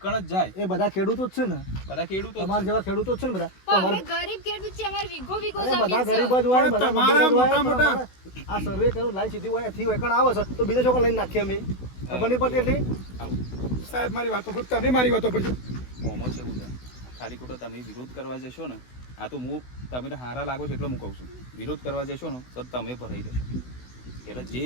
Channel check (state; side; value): late; right; 16 ms